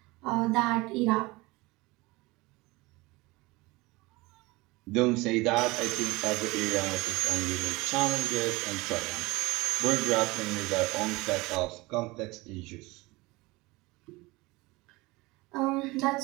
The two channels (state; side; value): quieter; left; 22.6 dB